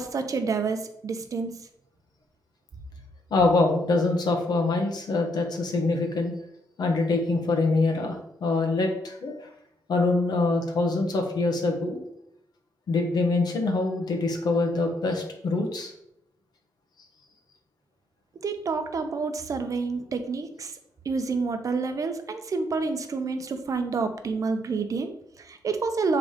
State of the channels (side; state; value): both; normal; correlation 0.72